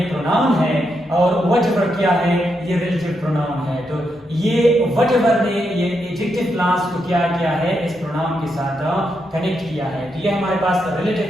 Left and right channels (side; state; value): both; normal; correlation 0.82